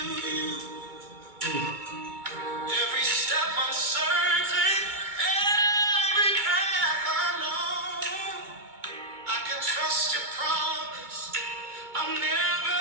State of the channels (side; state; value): left; late; 2.2 ms